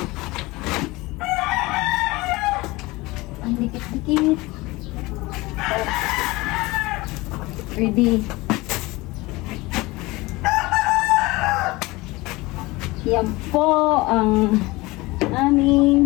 Ang dikit-dikit. Ready. Yan po ang aming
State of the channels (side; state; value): right; quieter; 21.6 dB